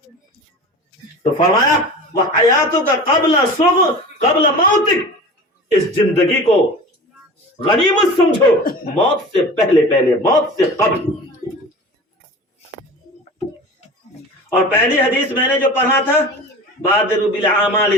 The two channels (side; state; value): both; normal; correlation 0.36